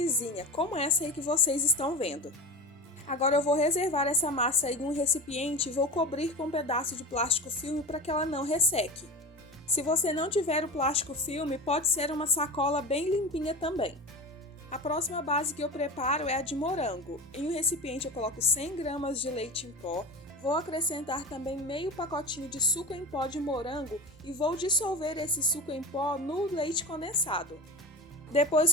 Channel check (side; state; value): both; normal; correlation 0.28